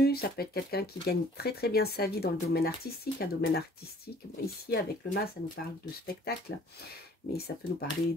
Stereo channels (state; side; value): normal; both; correlation 0.54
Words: ça peut être quelqu'un qui gagne très très bien sa vie dans le domaine artistique. Un domaine artistique, bon, ici avec le mât, ça nous parle de spectacle, mais ça peut nous parler